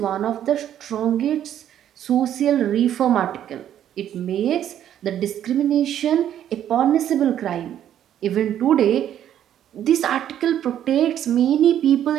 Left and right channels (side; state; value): left; quieter; 10.7 dB